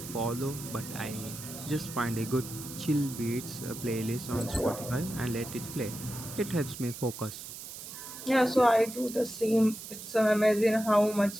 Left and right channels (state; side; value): noise; right; hiss, 11 dB below the sound